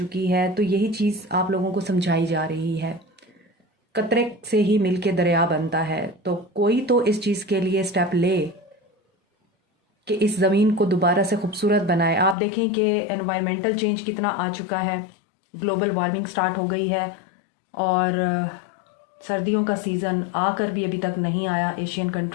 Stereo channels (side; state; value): right; drops out; at 12.4 s